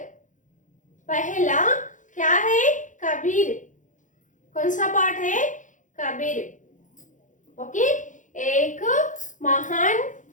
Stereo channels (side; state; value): right; late; 0.37 ms